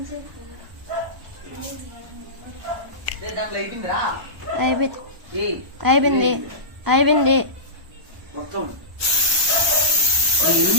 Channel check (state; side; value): late; left; 1.0 ms